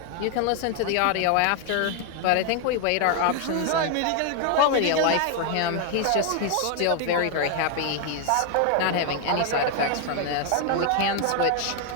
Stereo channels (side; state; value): both; different; correlation 0.00